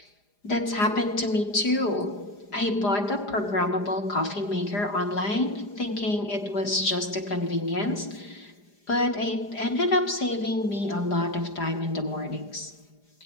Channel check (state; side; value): late; right; 4.9 ms